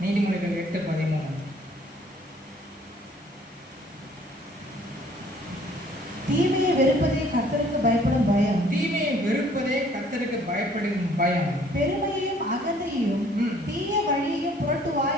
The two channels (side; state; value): both; normal; correlation 0.58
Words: நீதிமொழிகள் 8:13. தீமையை வெறுப்பதே கர்த்தருக்கு பயப்படும் பயம். தீமையை வெறுப்பதே கர்த்தருக்கு பயப்படும் பயம். பெருமையையும் அகந்தையும் தீய வழியையும் புரட்டு